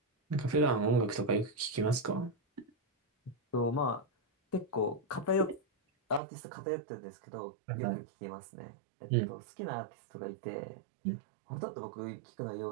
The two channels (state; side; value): drops out; left; at 6.2 s